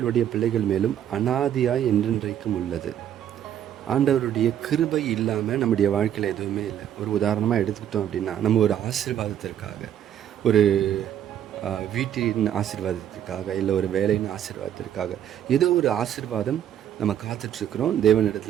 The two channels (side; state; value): left; quieter; 10.3 dB